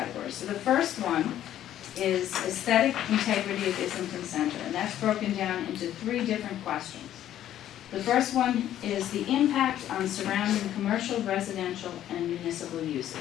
So the first one is aesthetic integrity of Islington Center, and that's broken down into 3 different questions. The first one is the impact on surrounding commercial, residential, and municipal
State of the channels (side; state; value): right; quieter; 11.8 dB